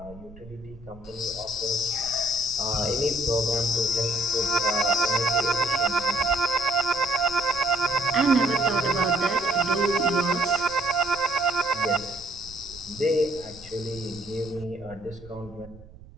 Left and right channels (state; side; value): noise; right; rumble, 20 dB below the sound